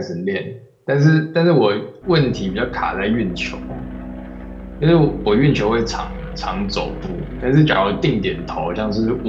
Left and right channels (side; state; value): both; identical; correlation 1.00